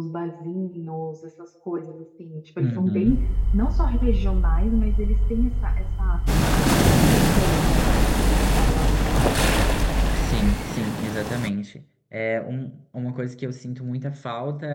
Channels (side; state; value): both; identical; correlation 1.00